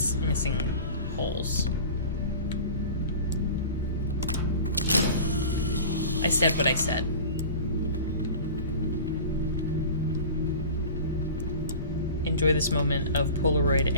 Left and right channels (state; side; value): inverted; both; correlation -0.37